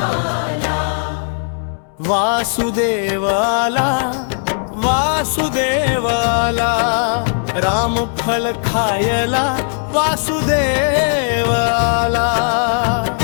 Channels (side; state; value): right; silent; 68 dB below the other